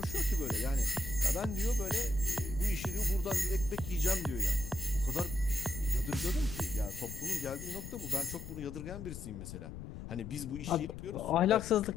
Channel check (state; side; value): noise; left; rumble, 10 dB below the sound